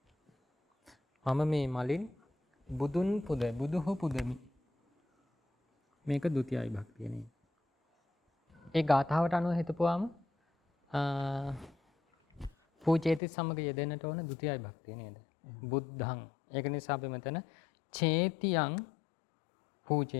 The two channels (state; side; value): drops out; right; at 13.2 s